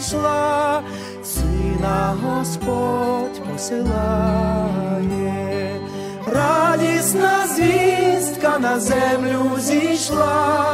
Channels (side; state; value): both; identical; correlation 1.00